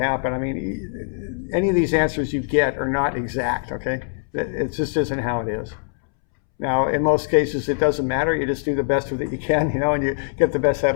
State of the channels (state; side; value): silent; right; 64 dB below the other